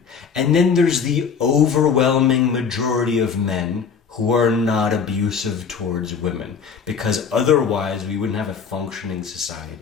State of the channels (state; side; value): quieter; right; 6.2 dB